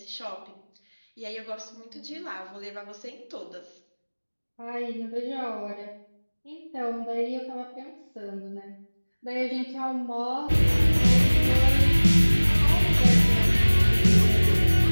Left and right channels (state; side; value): inverted; both; correlation -1.00